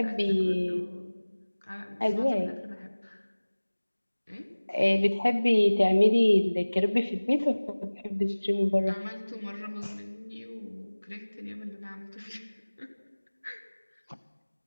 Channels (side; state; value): both; inverted; correlation -1.00